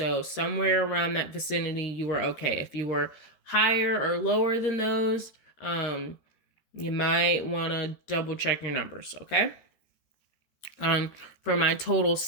somewhere around that vicinity, you are okay. If you were higher or lower than those, you might want to double check your numbers. Okay. For my total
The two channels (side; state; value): right; late; 13 ms